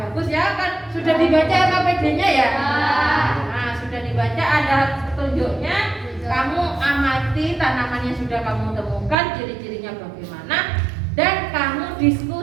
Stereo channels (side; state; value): left; drops out; at 9.2 s